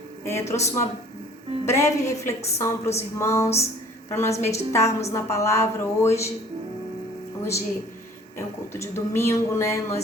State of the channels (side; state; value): both; normal; correlation 0.52